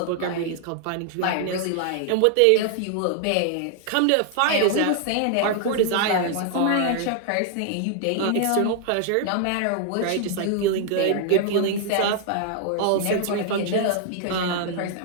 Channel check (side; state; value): both; different; correlation 0.00